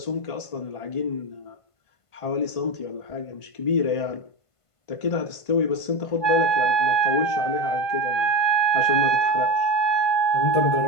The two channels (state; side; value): late; right; 1.5 ms